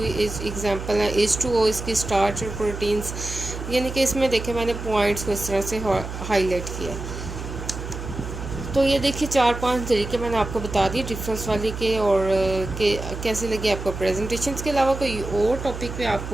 एग्जांपल है, H2O इसकी स्टार्च और प्रोटीन्स, यानी कि इसमें देखे मैंने पॉइंट्स को इस तरह से हाईलाइट किया। तो ये देखिए 4-5 तरीके मैंने आपको बता दिए डिफरेंस वाले के। और कैसे लगे आपको प्रेजेंटेशन के अलावा कोई और टॉपिक पे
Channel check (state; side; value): noise; right; hum, 8 dB below the sound